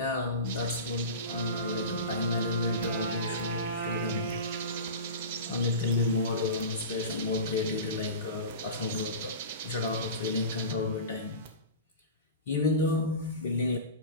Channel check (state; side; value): inverted; both; correlation -0.30